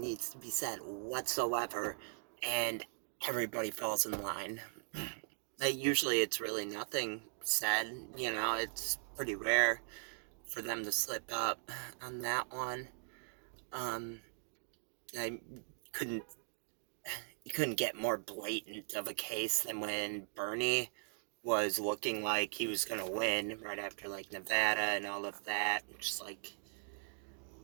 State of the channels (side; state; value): left; silent; digital silence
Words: needs to be said whatsoever, and everybody falls in line. Like, usually it's really nothing said, it's pretty rare for them to slip up on that one. I couldn't you couldn't get more blatant of a case than when Bernie was looking like he was gonna win right after like Nevada and all of that. Just like